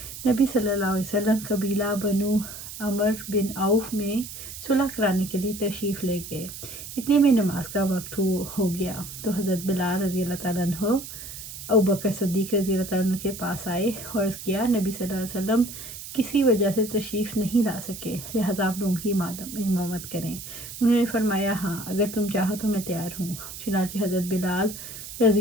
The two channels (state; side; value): noise; right; hiss, 11 dB below the sound